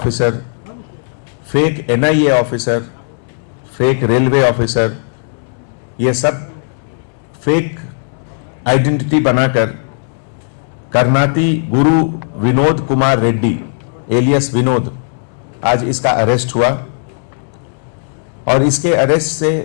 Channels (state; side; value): silent; right; 69 dB below the other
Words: fake NIA officer, fake railway officer, ये सब फेक आइडेंटिटी बनाकर करनाती गुरु विनोद कुमार रेड्डी एलियस विनोद, आज इसका अरेस्ट हुआ। और इसके अरेस्ट